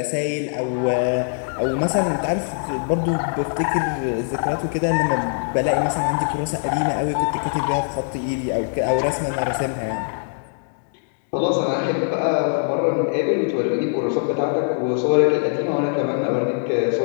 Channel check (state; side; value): silent; right; digital silence